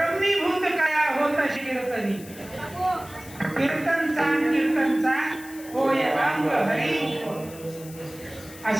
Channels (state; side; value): noise; left; hiss, 18 dB below the sound